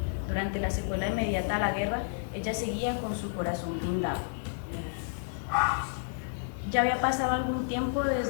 Durante la secuela inmediata a la guerra, ella seguía con su corazón blindado. Ya había pasado algún tiempo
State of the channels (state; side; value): silent; right; 57 dB below the other